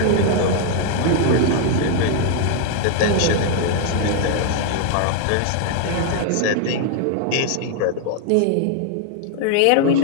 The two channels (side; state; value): both; different; correlation 0.00